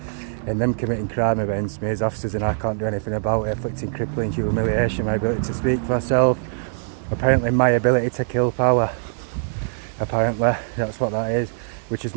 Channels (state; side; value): silent; left; digital silence